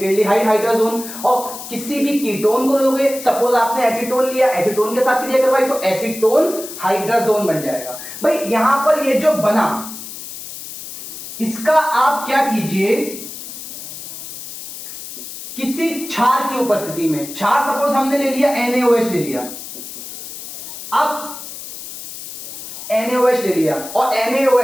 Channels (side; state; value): left; noise; hiss, 11 dB below the sound